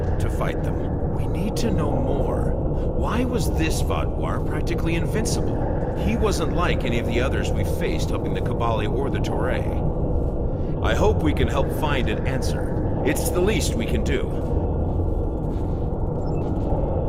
to fight them. We need to know more. Why was this Vaadwaur practically invincible? He wasn't like any of the others we faced helping the Kabali or the Toray. I hope we can help find an answer. It's the least we can do.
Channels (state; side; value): identical; both; correlation 1.00